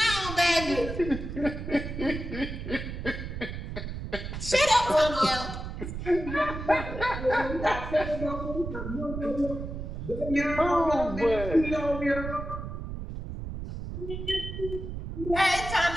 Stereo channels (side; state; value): right; noise; rumble, 7 dB below the sound